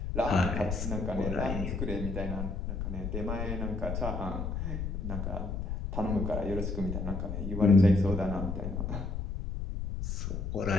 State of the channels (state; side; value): noise; left; rumble, 3 dB below the sound